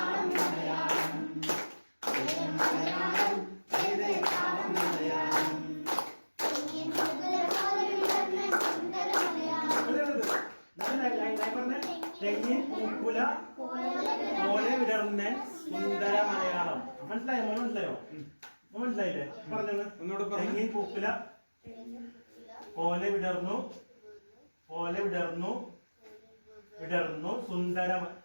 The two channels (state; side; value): inverted; both; correlation -1.00